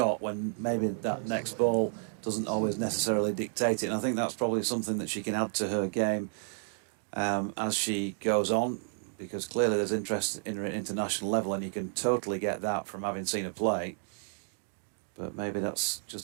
when maybe that next ball doesn't always necessarily dictate it. And I think that's probably something that she can add to her game as she goes on, because clearly there's interest in her at international level, and you can totally get that from having seen her play. But maybe that's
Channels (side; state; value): left; silent; digital silence